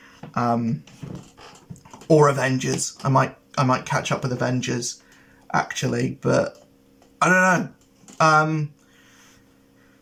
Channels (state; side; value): identical; both; correlation 1.00